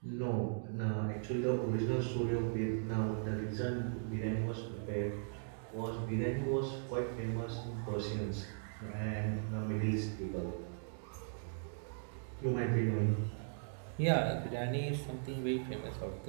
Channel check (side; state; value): left; silent; digital silence